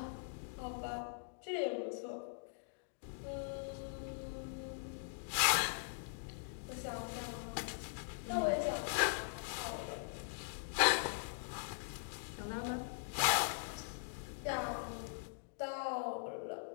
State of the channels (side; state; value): right; silent; digital silence